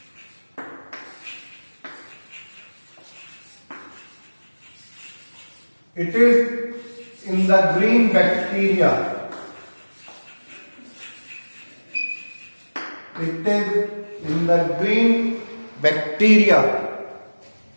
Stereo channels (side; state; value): both; inverted; correlation -1.00